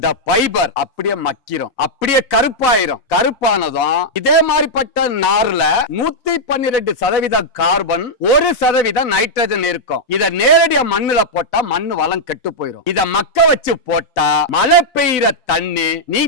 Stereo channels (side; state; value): both; normal; correlation -0.05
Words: ஃபைபர் அப்படியே மக்கிரும், அப்படியே கருப்பாயிரும். கருப்பானதும் இதே மாதிரிப்பட்ட நார்ல 112% கார்பன், 1% நைட்ரஜன் இருக்கும். இத நேரடியா மண்ணுல போட்டா மண்ணு வளம் கெட்டு போயிரும். இத மக்க வச்சு போட்டா மழை பெய்யற தண்ணி,